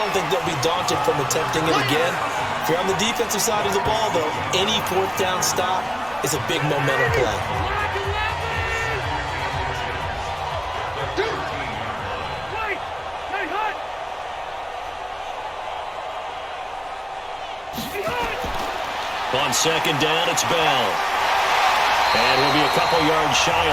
don't think they'll be daunted from attempting it again. If you're on the defensive side of the ball, though, any 4th down stop is a big momentum play. On 2nd down, it's Bell. And we'll be a couple yards shy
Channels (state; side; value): identical; both; correlation 1.00